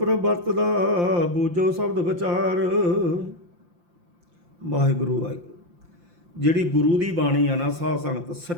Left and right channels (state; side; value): late; left; 5.8 ms